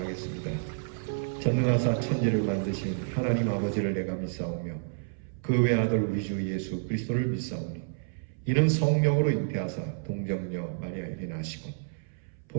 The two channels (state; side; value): silent; left; 58 dB below the other